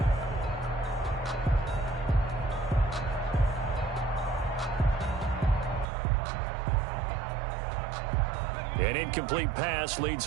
An incomplete pass leads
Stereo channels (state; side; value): drops out; left; at 5.9 s